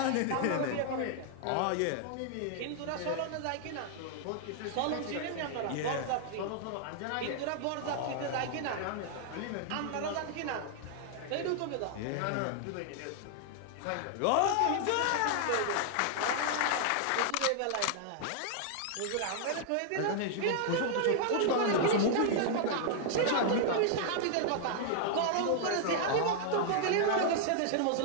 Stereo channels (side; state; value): both; different; correlation -0.01